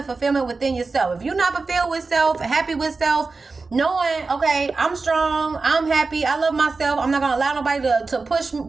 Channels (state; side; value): quieter; left; 4.0 dB